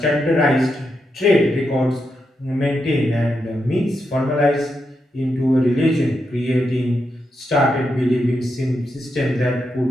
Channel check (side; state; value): both; normal; correlation 0.84